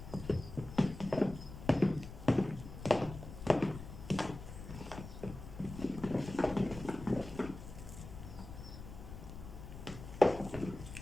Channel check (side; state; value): left; noise; rumble, 12 dB below the sound